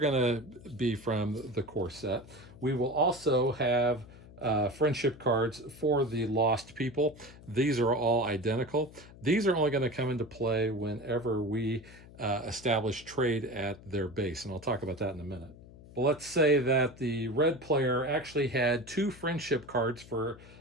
to be from the core set. We will also have friendship cards for the Lost People. These are all identical. These are only going to come into play whenever we establish trade at their base. And I'll talk about that in a minute. But let's say that the red player actually had 2 friendship cards for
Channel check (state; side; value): noise; left; hum, 20 dB below the sound